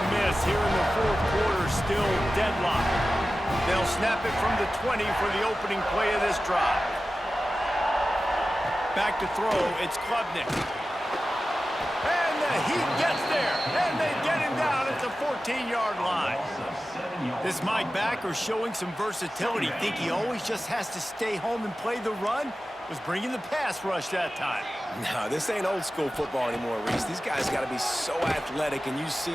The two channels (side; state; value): both; normal; correlation 0.94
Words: miss, here in the 4th quarter, still deadlocked. They'll snap it from the 20 for the opening play of this drive. Back to throw, it's Klubnik. And the Heat gets there, and they get him down at the 14-yard line. This Mike Backer showing some versatility. Think he always just has to stay home and play the run? Was bringing the pass rush that time. No, this ain't old school football anymore, Reese. These guys got to be so athletic, and you see